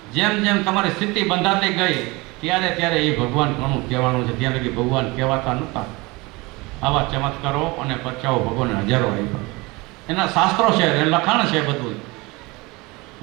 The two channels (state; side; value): quieter; left; 24.1 dB